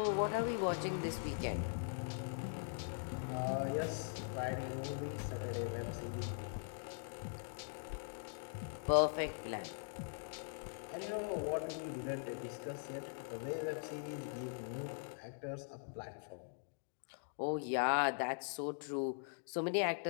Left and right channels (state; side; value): silent; right; digital silence